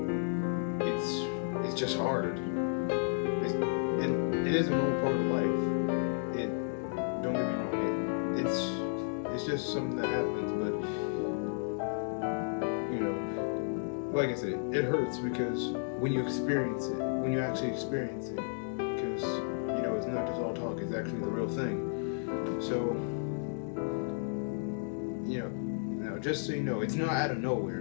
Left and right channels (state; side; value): silent; right; digital silence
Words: it's just hard. It is a normal part of life. Don't get me wrong. It's just something that happens, but like I said, it hurts because when you actually experience it, because it's not just all talk. It's actually the real thing. So now just so you know, it's not out of